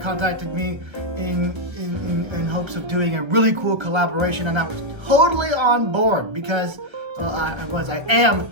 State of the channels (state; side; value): late; left; 1.3 ms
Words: contacted me in hopes of doing a really cool collaboration, and I was totally on board because I am